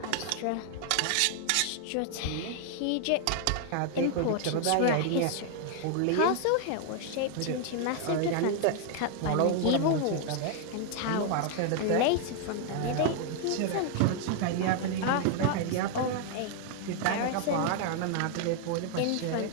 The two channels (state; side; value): different; both; correlation 0.00